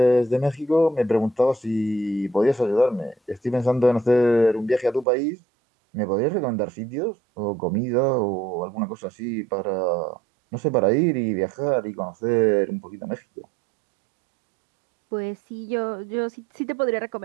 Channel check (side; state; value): left; drops out; at 5.1 s